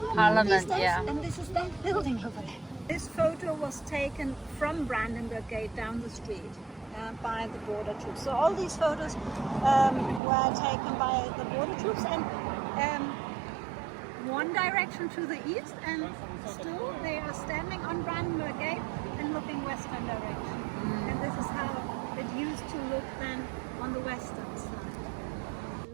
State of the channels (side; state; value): left; drops out; at 10.2 s